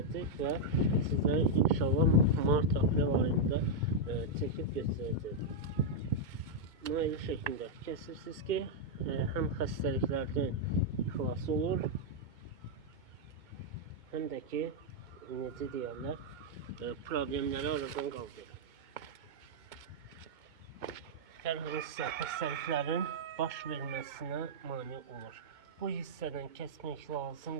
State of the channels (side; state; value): left; late; 2.2 ms